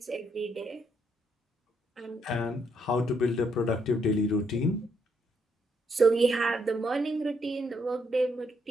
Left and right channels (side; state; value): both; normal; correlation 0.74